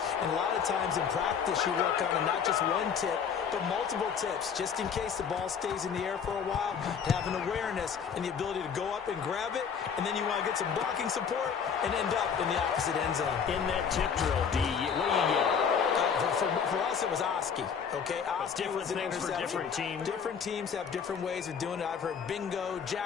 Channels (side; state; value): right; quieter; 6.9 dB